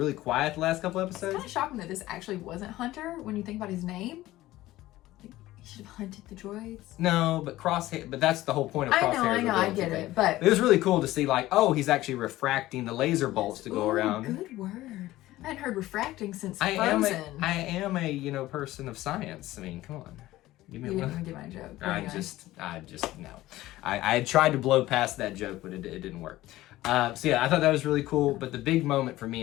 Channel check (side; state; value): right; quieter; 16.4 dB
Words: quiet the last couple It's episodes. kind of shocking that this actually wasn't Hunter when you think about his name. Like, he should have hunted the droids. No, but Crosshair. But that's the whole point of Crosshair's I know, I ability get thing. it. But It was really cool to see like, oh, he's actually refracting the laser bolts to go Ooh, around. Good word. I hadn't heard refracting since I am Frozen. a person of science. I mean, come on. Give me You a didn't even get my joke. I Anyway. just no. I had tried to blow past that joke, but it didn't work. So yeah, I thought that was really cool. But the big moment for me